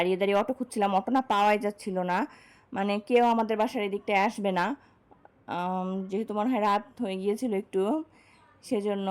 দাঁড়িয়ে অটো খুঁজছিলাম, অটো না পাওয়াই যাচ্ছিল না, মানে কেউ আমাদের বাসার এদিকটায় আসবে না, যেহেতু মনে হয় রাত হয়ে গিয়েছিল একটু, সেজন্য।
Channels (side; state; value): both; identical; correlation 1.00